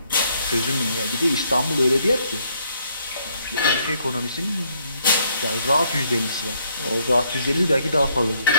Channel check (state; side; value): inverted; both; correlation -0.69